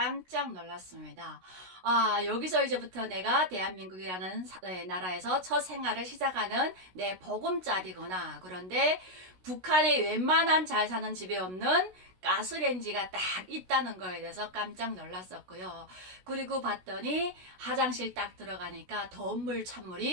놀랐습니다. 아, 여기서 이제부터 내가 대한민국이라는 나라에서 첫 생활을 시작하는 내 보금자리구나. 그런데 북한에 웬만한 잘 사는 집에 없는 가스레인지가 딱 있다는 거에 대해서 깜짝 놀랐었고요. 그리고 봤더니 화장실 딱 들어가니까 더운 물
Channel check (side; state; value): left; late; 16 ms